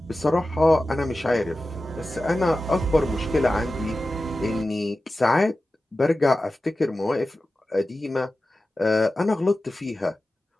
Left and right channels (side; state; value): both; normal; correlation 0.94